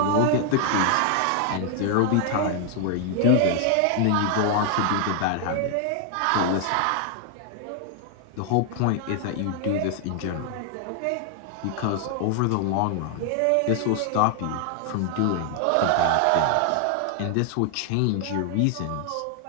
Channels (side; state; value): both; different; correlation 0.00